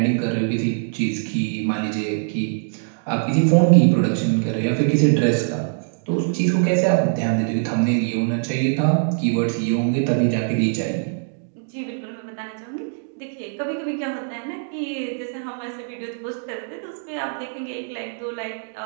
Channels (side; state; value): left; silent; digital silence